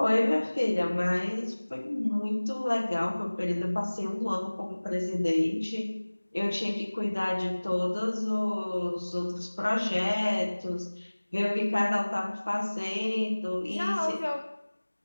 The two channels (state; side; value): inverted; both; correlation -1.00